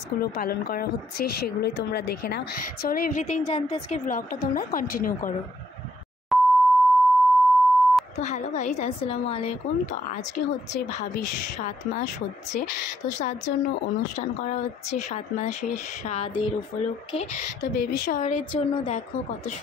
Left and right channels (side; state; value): both; normal; correlation 0.71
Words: পালন করা হচ্ছে সেগুলোই তোমরা দেখে নাও। চলো এভরিথিং জানতে আজকে ব্লগটা তোমরা কন্টিনিউ করো। তো হ্যালো গাইজ, আসসালামু আলাইকুম। তো আজকে হচ্ছে ভাবির 7 মাস হচ্ছে, তো তার জন্য অনুষ্ঠান করা হচ্ছে 7 মাসের স্বাদের উপলক্ষে। তো বেবি শাওয়ারের জন্য দেখো কত